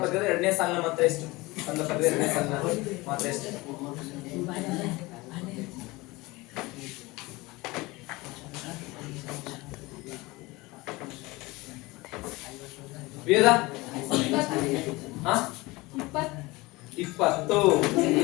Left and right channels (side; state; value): right; quieter; 22.2 dB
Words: ಪದ್ಯದ ಎರಡನೇ ಸಾಲಿನ ಮಾತ್ರ ಎಷ್ಟು? ಕಂದ ಪದ್ಯದ ಎರಡನೇ ಸಾಲಿನ ಮಾತ್ರ ಎಷ್ಟು? ವೇದ 20.